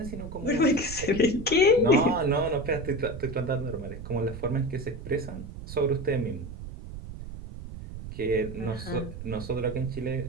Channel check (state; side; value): noise; right; rumble, 11 dB below the sound